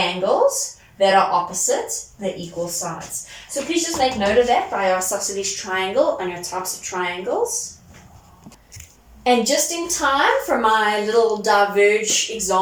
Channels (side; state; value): both; identical; correlation 1.00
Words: that are opposite the equal sides. So please just make note of that by your isosceles triangle and your types of triangles. And just in time for my little diverge